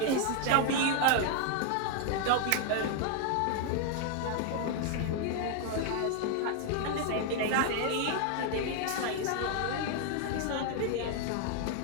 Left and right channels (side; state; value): both; different; correlation 0.00